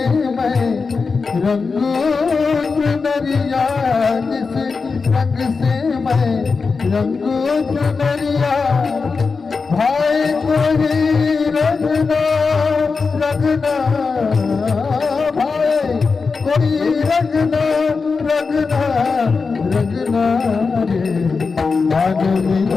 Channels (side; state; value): right; quieter; 4.7 dB